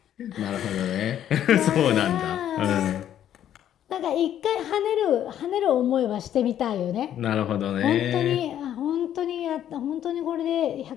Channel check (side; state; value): right; quieter; 10.8 dB